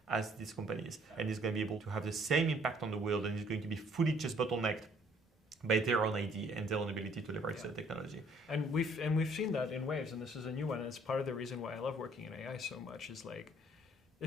as these companies, and is going to be able to have the same impact on the world, and is going to be fully just bottlenecked by their own idea and their own ability to leverage the technology. And we've seen that in waves, and this is a new one. And it's part of the reason why I love working in AI so much. Is like,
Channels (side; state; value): both; normal; correlation 0.61